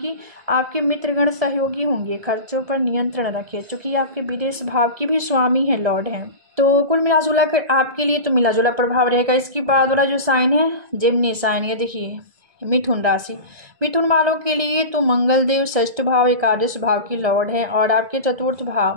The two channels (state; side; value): late; left; 1.7 ms